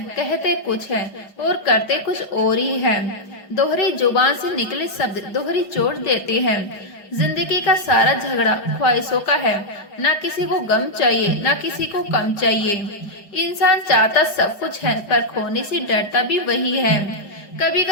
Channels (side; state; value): right; late; 5.0 ms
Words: कहते कुछ है और करते कुछ और ही है। दोहरी जुबान से निकले शब्द दोहरी चोट देते हैं। जिंदगी का सारा झगड़ा ख्वाहिशों का है, ना किसी को गम चाहिए ना किसी को कम चाहिए। इंसान चाहता सब कुछ है, पर खोने से डरता भी वही है। कभी